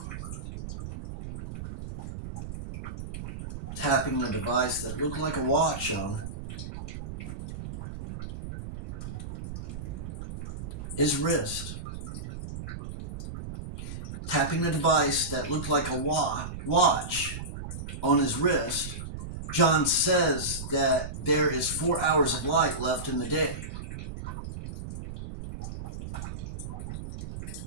Tapping the device that looked like a watch on his wrist. Tapping the device that looked like a watch on his wrist, John says that there is 4 hours of light left in the day.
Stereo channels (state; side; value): noise; right; rumble, 8 dB below the sound